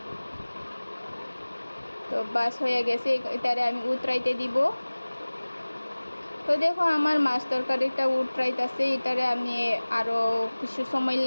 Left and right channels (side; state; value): both; inverted; correlation -1.00